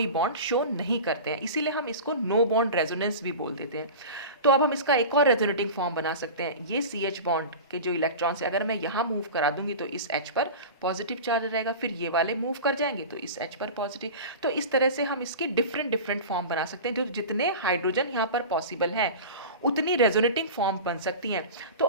बॉन्ड शो नहीं करते हैं, इसीलिए हम इसको नो बॉन्ड रेजोनेंस भी बोल देते हैं। तो अब हम इसका एक और रेजोनेटिंग फॉर्म बना सकते हैं। ये CH बॉन्ड के जो इलेक्ट्रॉन्स है, अगर मैं यहाँ मूव करा दूंगी तो इस H पर पॉजिटिव चार्ज रहेगा, फिर ये वाले मूव कर जाएंगे तो इस H पर पॉजिटिव। तो इस तरह से हम इसकी डिफरेंट डिफरेंट फॉर्म बना सकते हैं, जो जितने हाइड्रोजन यहाँ पर पॉसिबल हैं उतनी रेजोनेटिंग फॉर्म बन सकती हैं। तो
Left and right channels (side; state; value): both; inverted; correlation -0.31